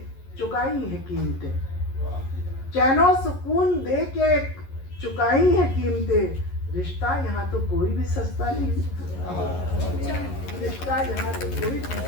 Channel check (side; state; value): right; late; 11 ms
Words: चुकाई है कीमतें, चैनो सुकून दे के चुकाई है कीमतें, रिश्ता यहाँ तो कोई भी सस्ता नहीं, रिश्ता यहाँ तो कोई भी